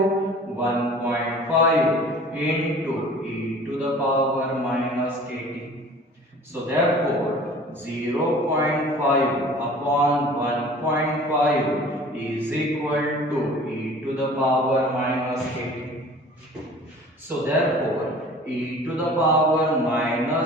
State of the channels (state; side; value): normal; both; correlation 0.46